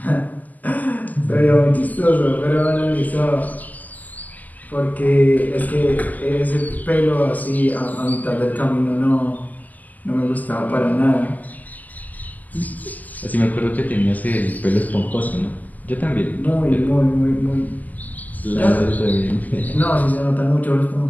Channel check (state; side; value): late; right; 0.081 ms